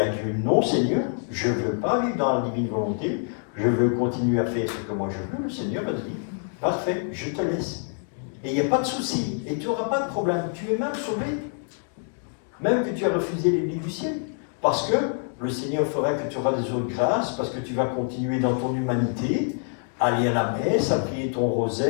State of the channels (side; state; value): right; silent; 56 dB below the other